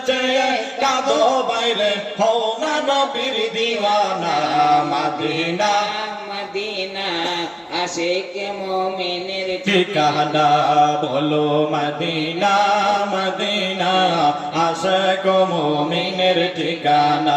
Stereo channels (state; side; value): identical; both; correlation 1.00